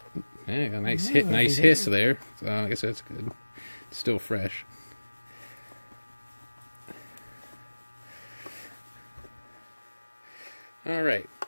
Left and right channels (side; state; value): both; inverted; correlation -1.00